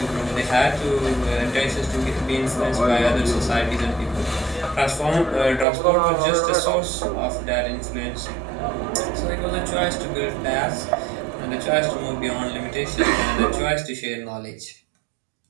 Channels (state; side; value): drops out; left; at 5.7 s